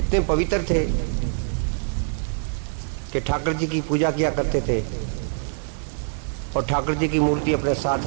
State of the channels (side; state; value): left; silent; digital silence